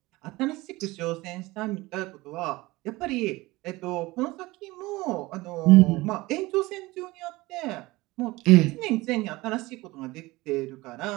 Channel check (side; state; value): left; quieter; 20.7 dB